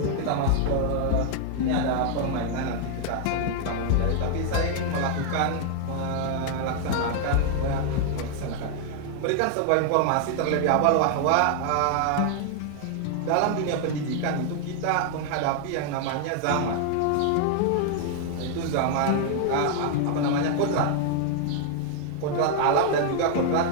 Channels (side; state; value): both; different; correlation 0.00